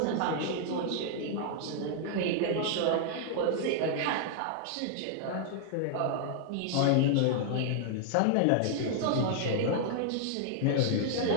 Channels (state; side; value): different; both; correlation -0.01